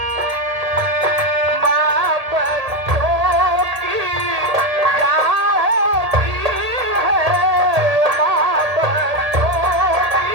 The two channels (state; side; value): late; left; 1.8 ms